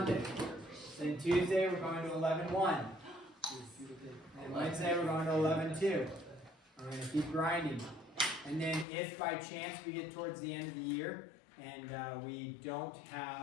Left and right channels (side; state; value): right; drops out; at 8.8 s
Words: Then Tuesday, we're going to 11-1. And Wednesday, we're going to 11-2. We're going to keep grinding. And then if by chance we get towards the end of the year and we don't